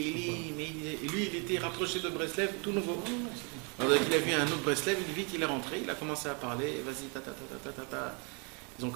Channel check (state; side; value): quieter; left; 35.1 dB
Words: et lui, il était rapproché de Breslev, tout nouveau. Alors il a vu un autre Breslev, vite il est rentré, il a commencé à parler, vas-y, ta ta ta ta ta ta. Ils ont